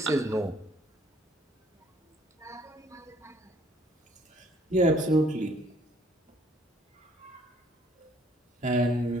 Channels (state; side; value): normal; both; correlation 0.61